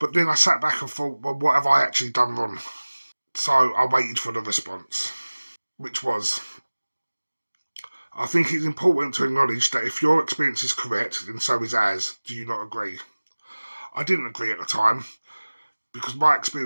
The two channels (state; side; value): inverted; both; correlation -1.00